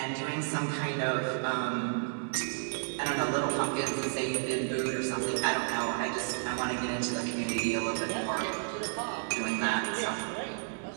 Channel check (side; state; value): left; silent; digital silence